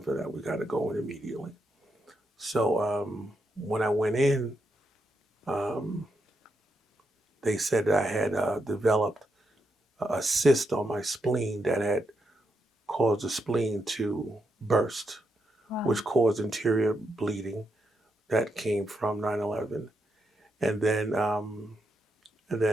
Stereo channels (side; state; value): both; normal; correlation 0.82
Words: for that. We gotta go in immediately. So when I went in, um, they said that I had developed a cyst on my spleen that had caused the spleen to burst, Wow. which caused interior bleeding that came from 9/11. And then, and